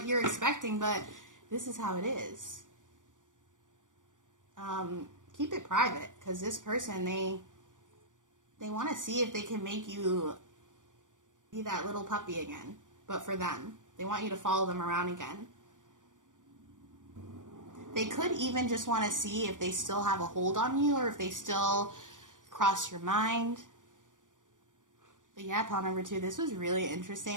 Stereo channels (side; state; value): left; late; 0.87 ms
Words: you're expecting, but this is how it is. Keep it private, because this person, they want to see if they can make you be that little puppy again, but for them. They want you to follow them around again. They could even just want to see if they still have a hold on you or if they still cross your mind. But yeah, pile number 2, this was really interesting.